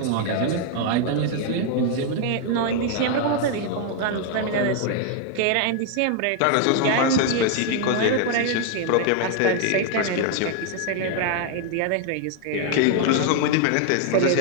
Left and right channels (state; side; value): different; both; correlation 0.00